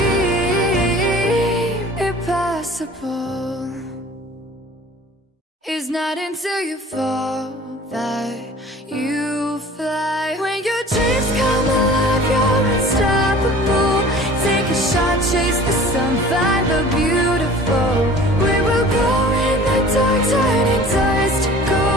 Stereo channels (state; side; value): normal; both; correlation 0.45